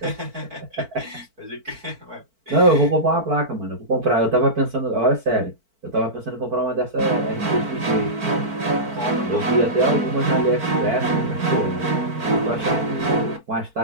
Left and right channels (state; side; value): late; left; 4.5 ms